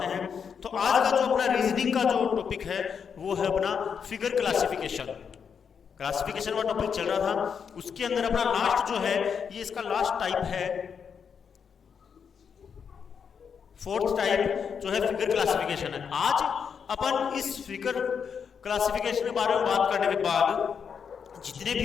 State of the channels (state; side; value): quieter; right; 6.8 dB